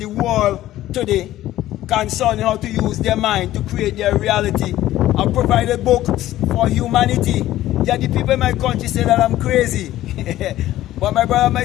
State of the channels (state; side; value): quieter; right; 14.4 dB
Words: world today concerning how to use their mind to create their reality. I've provided books for humanity. Yet the people in my country say that I'm crazy. But my brother, my